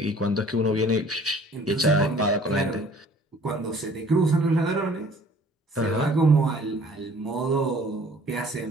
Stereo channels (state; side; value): normal; both; correlation 0.53